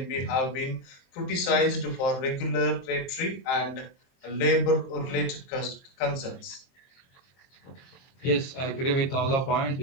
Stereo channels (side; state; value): right; late; 23 ms